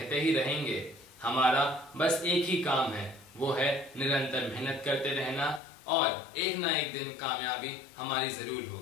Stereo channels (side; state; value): right; drops out; at 5.6 s